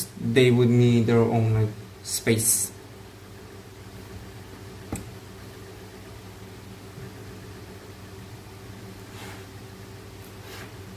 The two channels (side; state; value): both; identical; correlation 1.00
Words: They would need their own like space.